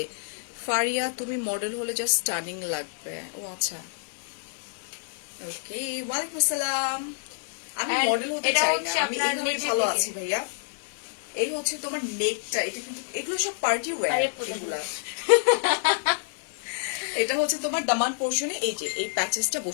ফারিয়া, তুমি মডেল হলে জাস্ট স্টানিং লাগবে। ও আচ্ছা, ওকে। ওয়ালাইকুম আসসালাম। আমি And মডেল হতে এটা চাই না, হচ্ছে আমি আপনার এইভাবে নিচের ভালো দিকে। আছি ভাইয়া। এই হচ্ছে তোমার নেকটা, এটা কিন্তু এগুলো সব পার্টি ওয়্যার। আরে পুরো। এগুলা এটা হচ্ছে তোমার দামান পোর্শনে এই যে এই প্যাচেসটা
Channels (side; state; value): right; silent; digital silence